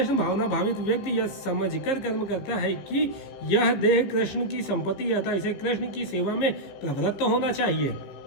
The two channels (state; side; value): late; right; 15 ms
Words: भावना भावित व्यक्ति यह समझकर कर्म करता है कि यह देह कृष्ण की संपत्ति है, अतः इसे कृष्ण की सेवा में प्रवृत्त होना चाहिए।